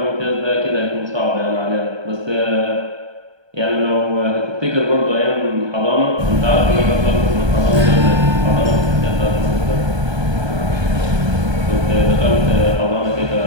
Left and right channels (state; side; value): late; left; 1.3 ms